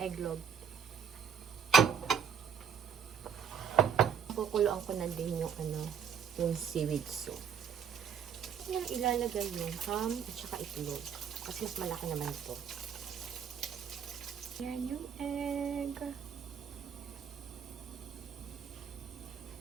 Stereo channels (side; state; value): left; quieter; 7.5 dB